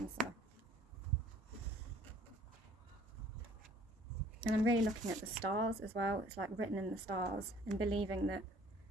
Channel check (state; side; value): normal; both; correlation 0.55